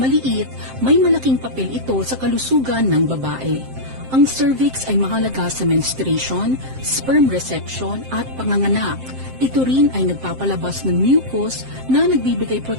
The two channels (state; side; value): late; left; 7.7 ms